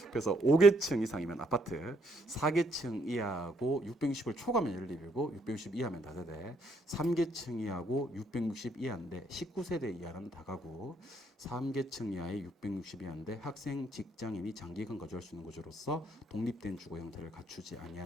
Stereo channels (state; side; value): normal; both; correlation 0.71